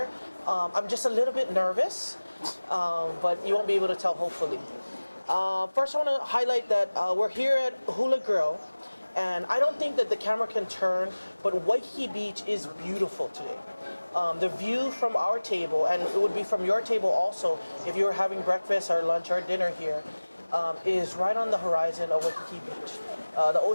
I'm just a little bit nervous, but you won't be able to tell hopefully. First I want to highlight that we're here at Hula Grill, and I don't think that the camera can turn, but Waikiki Beach is beautiful today. The view from our table, and it would be from your table also if you were having breakfast or lunch or dinner here, is right on the horizon of Waikiki Beach. The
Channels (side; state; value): both; inverted; correlation -1.00